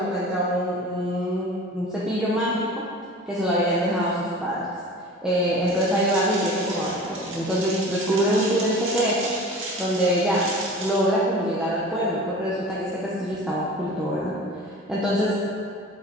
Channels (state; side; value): normal; both; correlation 0.39